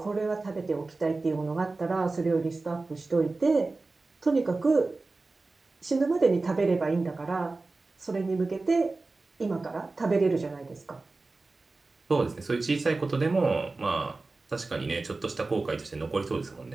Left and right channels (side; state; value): left; quieter; 3.5 dB